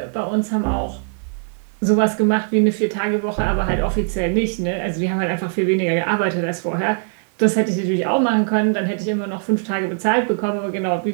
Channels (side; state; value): left; silent; 61 dB below the other